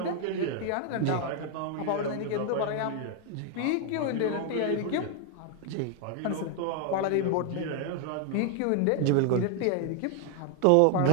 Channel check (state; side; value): different; both; correlation 0.00